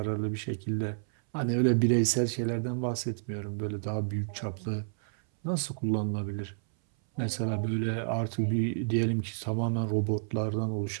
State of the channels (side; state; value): left; silent; 58 dB below the other